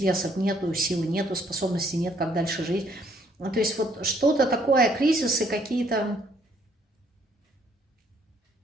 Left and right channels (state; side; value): normal; both; correlation 0.66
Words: нету, силы нету, способностей нет, как дальше жить. То есть вот что-то такое, кризисы какие-то,